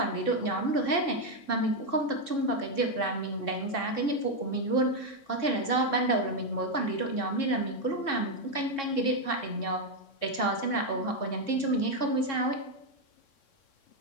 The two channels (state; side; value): late; right; 3.6 ms